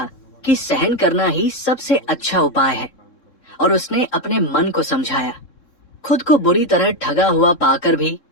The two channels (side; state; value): right; late; 3.7 ms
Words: कि सहन करना ही सबसे अच्छा उपाय है, और उसने अपने मन को समझाया। खुद को बुरी तरह ठगा हुआ पाकर भी